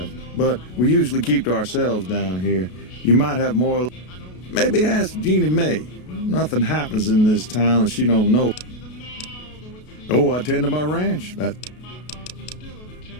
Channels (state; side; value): late; right; 33 ms